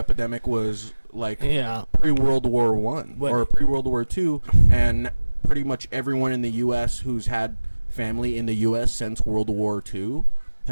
was, like, yeah. pre-World War One But- or pre-World War II, and pretty much everyone in the U.S. who's had family in the U.S. since World War II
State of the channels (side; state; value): both; inverted; correlation -1.00